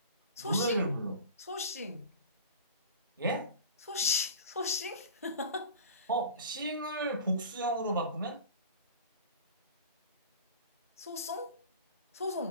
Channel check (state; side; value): inverted; both; correlation -0.38